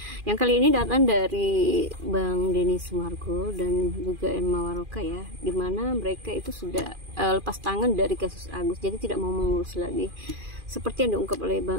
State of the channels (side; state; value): left; late; 2.4 ms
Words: Yang kali ini datang dari Bang Denny Sumargo dan juga Emma Waroka ya, dimana mereka itu sudah lepas tangan dari kasus Agus, jadi tidak mau mengurus lagi. Seperti yang diungkap oleh